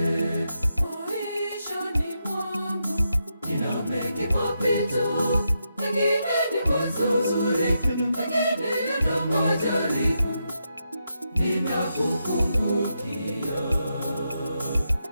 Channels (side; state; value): both; inverted; correlation -0.84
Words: Maishani mwangu nina mengi mapito, mengine ni mazuri, mengine yana majaribu. Ninakukumbukia